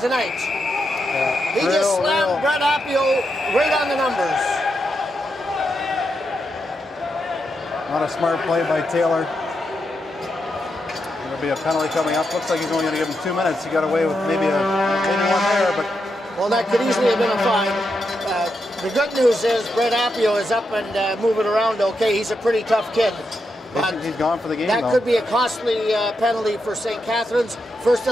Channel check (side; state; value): both; normal; correlation 0.84